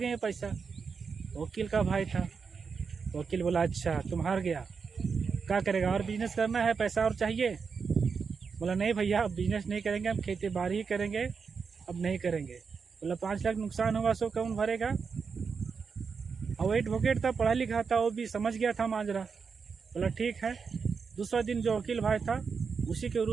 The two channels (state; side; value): quieter; left; 5.6 dB